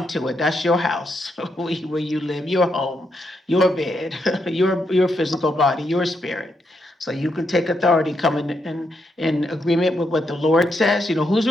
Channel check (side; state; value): both; normal; correlation 0.80